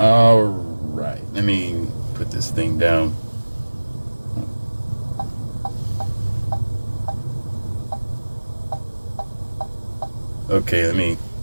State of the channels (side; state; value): both; inverted; correlation -1.00